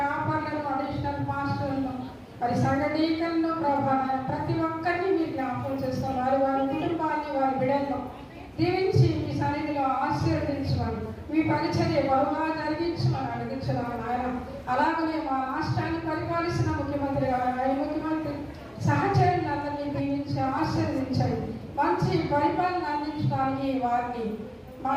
అడిషనల్ మాస్టర్లను, మరి సంఘ డీకన్ను ప్రభా, ప్రతి ఒక్కరిని మీరు జ్ఞాపకం చేసుకోండి. వారి వారి కుటుంబాన్ని, వారి బిడ్డలను దీవించి మీ సన్నిధిలో ఆశీర్వదించమని, మీ పరిచర్య బహుగా జరిగించమని అడిగించున్నాను ఆయన. అలాగనే మా రాష్ట్రాన్ని పరిపాలిస్తున్న ముఖ్యమంత్రి గారు, ముఖ్యమంత్రి సహచరులందరినీ దీవించి ఆశీర్వదించండి. మంచి పరిపాలన అందించడానికి వారిని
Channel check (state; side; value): identical; both; correlation 1.00